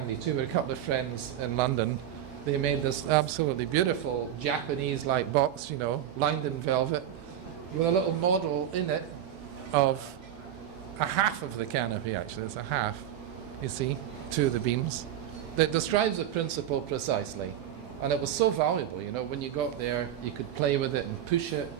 too. We had a couple of friends in London. They made this absolutely beautiful Japanese-like box, you know, lined in velvet, with a little model in it of a half of the canopy, actually. It's a half, you see, 2 of the beams. That describes the principle precisely. And it was so valuable, you know, when you got there, you could play with it and push it.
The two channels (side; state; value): left; quieter; 10.7 dB